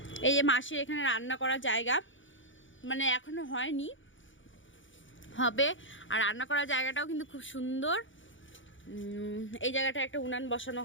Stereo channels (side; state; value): right; late; 0.56 ms